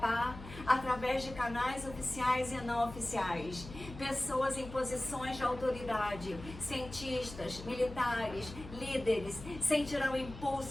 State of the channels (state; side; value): noise; left; hum, 13 dB below the sound